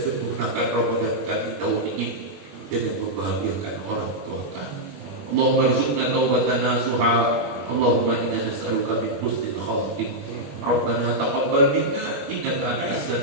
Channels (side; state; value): left; late; 21 ms